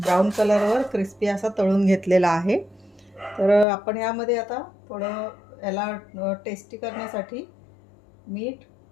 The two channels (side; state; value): right; drops out; at 3.7 s